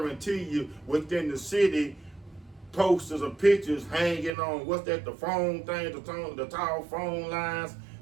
you, within the city, posters or pictures hanging on, what's that, the phone thing, the tall phone lines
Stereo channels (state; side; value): drops out; left; at 4.3 s